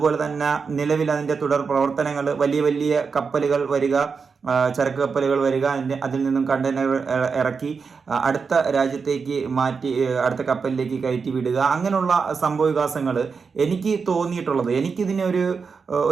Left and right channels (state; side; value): quieter; left; 5.3 dB